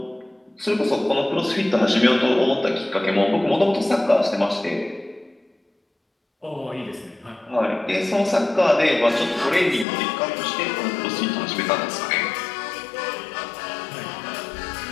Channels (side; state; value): right; drops out; at 9.9 s